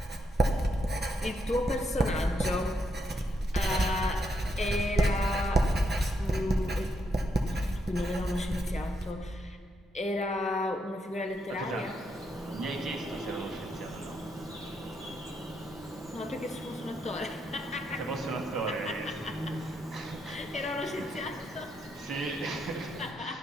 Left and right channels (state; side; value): normal; both; correlation 0.79